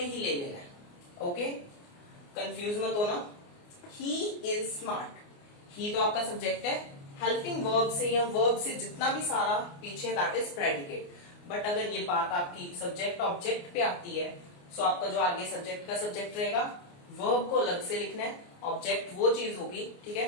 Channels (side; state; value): right; late; 29 ms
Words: ही ले लेना है। ओके, कंफ्यूज मत होना। ही इज स्मार्ट, ही तो आपका सब्जेक्ट है, हेल्पिंग वर्ब से या वर्ब से जितना भी सारा पीछे दैट इज प्रेडिकेट। बट अगर ये बात आपकी सब्जेक्ट ऑब्जेक्ट पे आती है, सो आपका जो आगे सब्जेक्ट का सब्जेक्ट रहेगा, वर्ब को अलग से लिखना है, ऑब्जेक्ट वो चीज होगी, ठीक है।